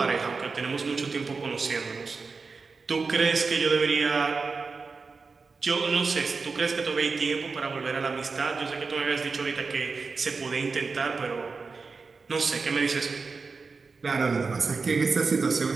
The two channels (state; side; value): quieter; left; 4.5 dB